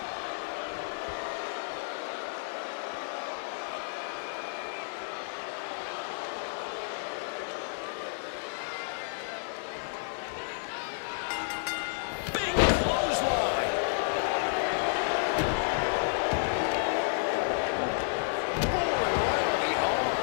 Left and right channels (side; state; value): right; silent; digital silence